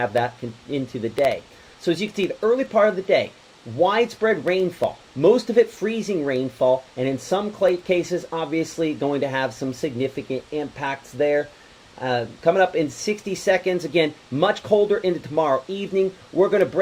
that into the day. So as you can see, the early part of the day, widespread rainfall, most of it freezing rainfall, and in some cases, obviously, going to have some significant impacts there. Coming up in 60 seconds, again, much colder into tomorrow evening. We're going to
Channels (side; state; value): both; identical; correlation 1.00